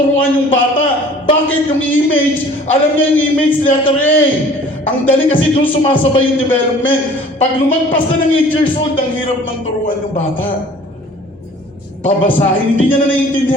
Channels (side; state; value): both; normal; correlation 0.49